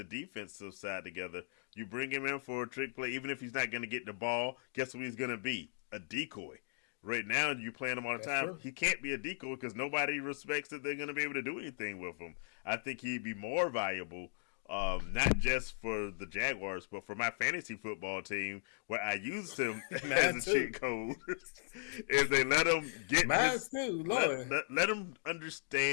defensive side together. You bring him in for a trick play, even if he's not going to get the ball. Guess what he's going to be? A decoy. Right now, you playing him all the That's time. true. He can't be a decoy because nobody respects that they're going to be able to do anything with him. I think he'd be more valuable, not just for the Jaguars, but for my fantasy football team, where I used him as a cheat code. Is they let him get Mine too, Lord. let him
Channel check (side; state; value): right; silent; digital silence